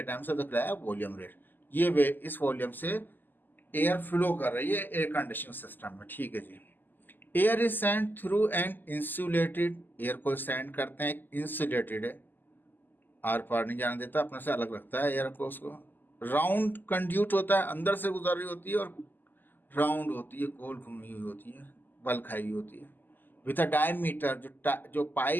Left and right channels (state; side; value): late; right; 0.090 ms